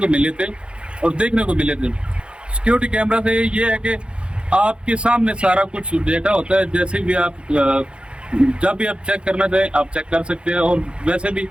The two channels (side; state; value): left; late; 0.056 ms